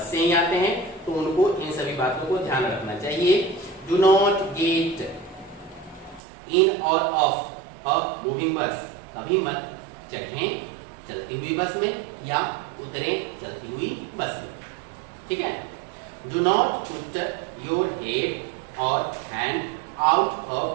से ही आते हैं, तो उनको इन सभी बातों को ध्यान रखना चाहिए। डू नॉट गेट इन और ऑफ अ मूविंग बस। कभी मत चढ़ें चलती हुई बस में या उतरे चलती हुई बस में। ठीक है। Do not put your head और hand out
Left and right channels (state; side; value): drops out; left; at 6.2 s